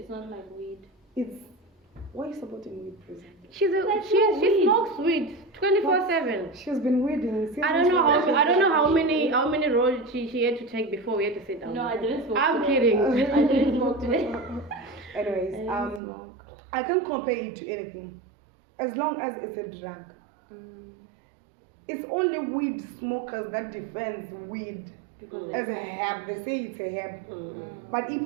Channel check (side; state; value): left; drops out; at 16.0 s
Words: not like weed. Why are you supporting weed, prison? She smokes weed 24/7. She's been weeding since. I don't know how many rolls she had to take before we had to sit down. No, I didn't smoke. I'm today. kidding. I didn't smoke today. Anyways, I can't compare it to anything, as long as it's a drug. It's only weed smokers that defends weed as a herb. They say it's a herb, but